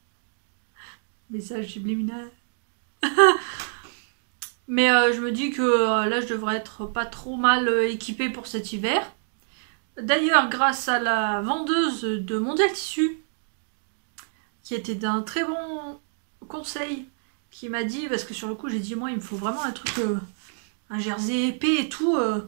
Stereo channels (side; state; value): left; silent; digital silence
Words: Message subliminal. Mais je me dis que là je devrais être pas trop mal équipée pour cet hiver. D'ailleurs, grâce à la vendeuse de Mondial Tissu, qui était d'un très bon conseil, qui m'a dit, parce que sur le coup j'ai dit moi il me faut vraiment un truc, un jersey épais et tout,